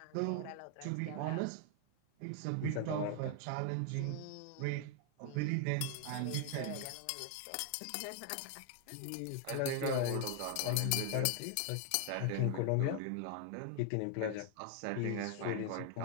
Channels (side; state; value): both; different; correlation 0.00